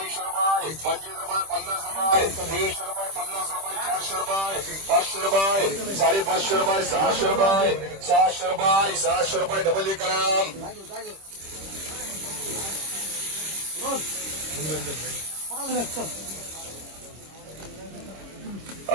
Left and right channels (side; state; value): left; late; 26 ms